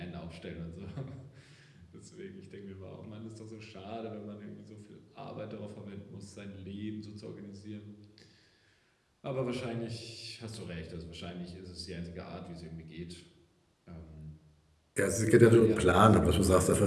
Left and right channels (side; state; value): both; identical; correlation 1.00